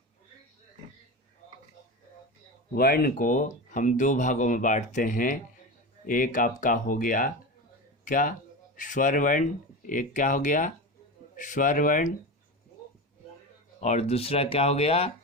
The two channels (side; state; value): both; normal; correlation 0.24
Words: वर्ण को हम 2 भागों में बांटते हैं। एक आपका हो गया क्या, स्वर वर्ण। एक क्या हो गया, स्वर वर्ण, और दूसरा क्या हो गया,